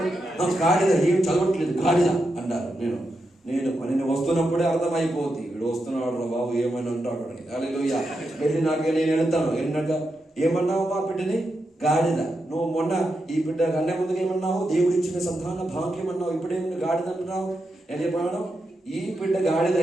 గాడిద ఏం చదవట్లేదు, గాడిద అంటారు. నేను వస్తున్నప్పుడే అర్థమైపోతుంది, వీడు వస్తున్నాడు రా బాబు, ఏమైనా అంటాడు అని. హల్లెలూయా. వెళ్ళినాక నేను వెళ్తాను, వెళ్ళినాక ఏమన్నావు మా బిడ్డని? గాడిద. నువ్వు మొన్న ఈ బిడ్డ కన్నా ముందుకు ఏమన్నావు? దేవుడు ఇచ్చిన సంతాన భాగ్యం అన్నావు, ఇప్పుడేమన్నా గాడిద అంటున్నావు. నేను చెప్పాను, ఈ బిడ్డ గాడిద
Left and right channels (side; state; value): both; normal; correlation 0.86